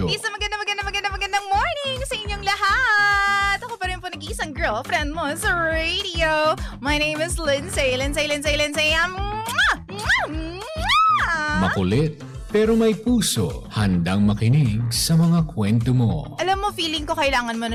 Isang magandang morning sa inyong lahat! Ako pa rin po nag-iisang girlfriend mo sa radio. My name is Lindsay. Makulit pero may puso, handang makinig sa mga kwento mo. Alam mo, feeling ko kailangan mo na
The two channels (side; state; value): both; identical; correlation 1.00